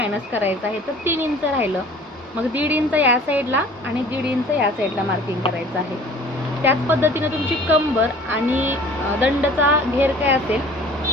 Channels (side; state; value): both; normal; correlation 0.48